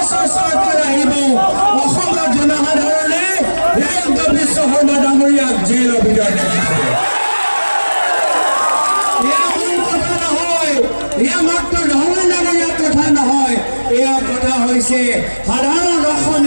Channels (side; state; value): both; inverted; correlation -1.00